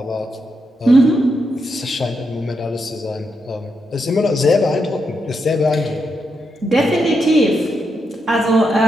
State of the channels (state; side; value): normal; both; correlation 0.83